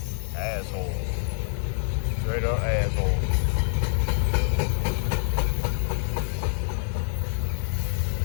Asshole. Straight up asshole.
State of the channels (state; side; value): silent; right; 61 dB below the other